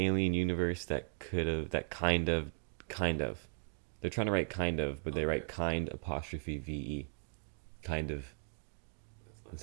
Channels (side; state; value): left; silent; 53 dB below the other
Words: universe that could have, that kind of. They're trying to write kind of, but they write kind apostrophe VE. Kind of. That's not